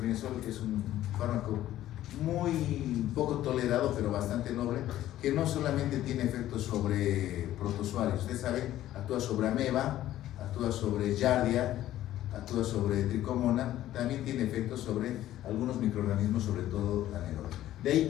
es un fármaco muy poco tolerado, pero bastante noble, que no solamente tiene efectos sobre protozoarios. Ustedes saben, actúa sobre ameba, actúa sobre giardia, actúa sobre tricomona, también tiene efectos sobre algunos microorganismos, sobre todo anaerobios. De ahí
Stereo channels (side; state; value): right; quieter; 13.5 dB